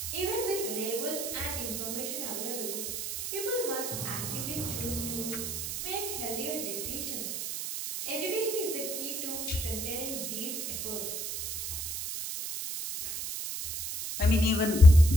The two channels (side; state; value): right; noise; hiss, 4 dB below the sound